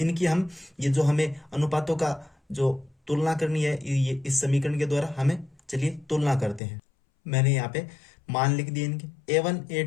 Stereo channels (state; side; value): drops out; right; at 6.6 s